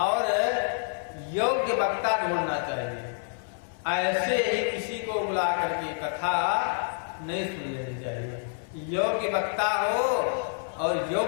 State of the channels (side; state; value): right; silent; 59 dB below the other